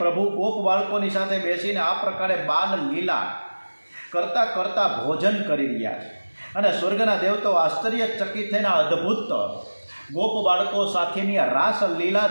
ગોપ બાળકોની સાથે બેસીને આ પ્રકારે બાલ લીલા કરતાં કરતાં ભોજન કરી રહ્યા છે. અને સ્વર્ગના દેવતો આશ્ચર્યચકિત થઈને અદ્ભુત ગોપ બાળકો સાથેની આ રાસ લીલા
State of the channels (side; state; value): both; inverted; correlation -1.00